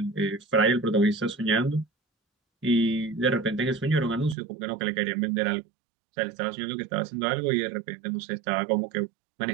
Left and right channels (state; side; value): drops out; left; at 4.4 s